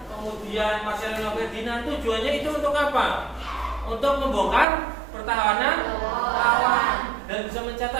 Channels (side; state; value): left; drops out; at 4.7 s